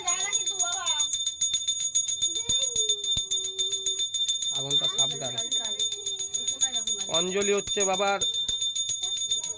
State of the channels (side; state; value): both; identical; correlation 1.00